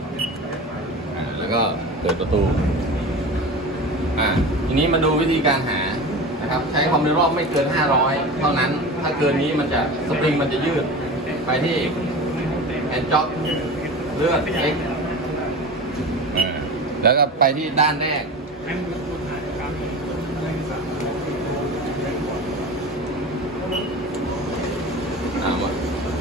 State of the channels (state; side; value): normal; both; correlation 0.31